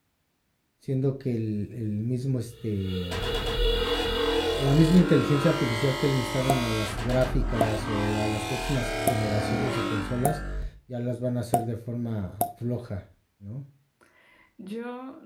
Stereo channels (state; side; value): identical; both; correlation 1.00